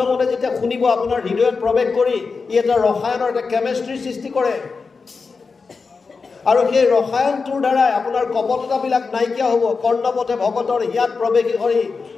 মনে যেতিয়া শুনিব, আপোনাৰ হৃদয়ত প্ৰৱেশ কৰি ই এটা ৰসায়নৰ এটা কেমেষ্ট্ৰিৰ সৃষ্টি কৰে। আৰু সেই ৰসায়নটোৰ দ্বাৰাই আপোনাৰ কপটতাবিলাক নাইকিয়া হ'ব। কৰ্ণপথে ভকতৰ হিয়াত প্ৰৱেশী হৰি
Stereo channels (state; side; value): quieter; right; 4.7 dB